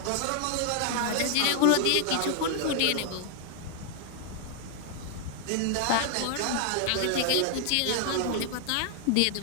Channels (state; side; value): different; both; correlation 0.00